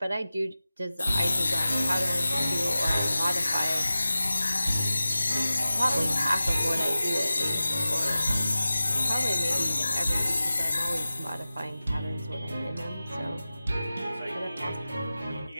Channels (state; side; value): inverted; both; correlation -0.94